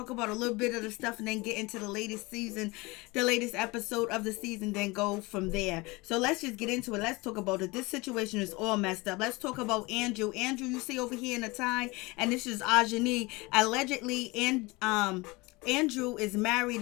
about a little bit of the stuff and then get into the latest season, the latest episode of the season, then go from there. So let's just get into it. Let's talk about it. This situation is all messed up. Let's talk about Andrew. Andrew, you see over here in the tie, and this is Ajani. Allegedly, and Andrew is married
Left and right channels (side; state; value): right; quieter; 24.0 dB